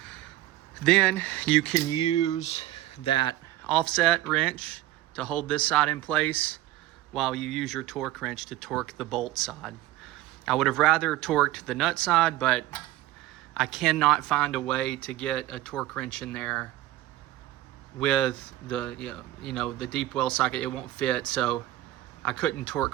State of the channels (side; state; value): left; quieter; 15.3 dB